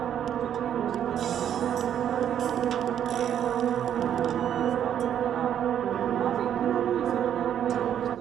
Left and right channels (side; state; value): left; quieter; 9.7 dB